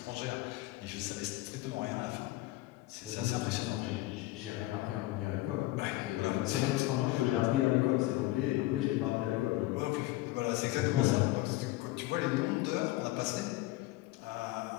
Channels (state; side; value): quieter; right; 18.2 dB